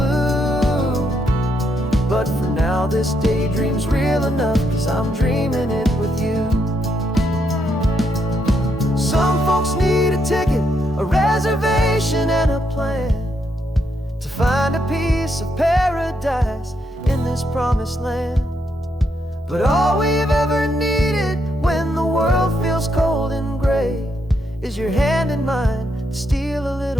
But for now this daydream's real enough, 'cause I'm dreaming it with you. Some folks need a ticket, a reservation and a plan to find a piece of paradise in this promised land. is your hand in mine to steal a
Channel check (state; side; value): normal; both; correlation 0.78